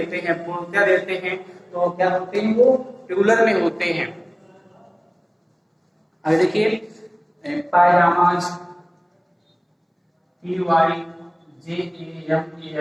हैं, पूर्णता देते हैं, तो क्या होते हैं, वो प्लूरल में होते हैं। अब देखिए पायजामाज,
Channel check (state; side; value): identical; both; correlation 1.00